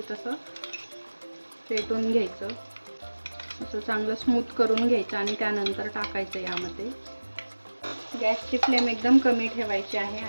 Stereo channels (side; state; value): both; inverted; correlation -1.00